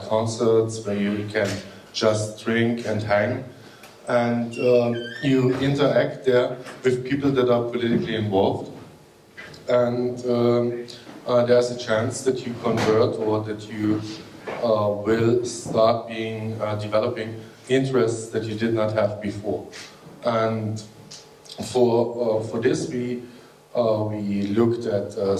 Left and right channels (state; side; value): identical; both; correlation 1.00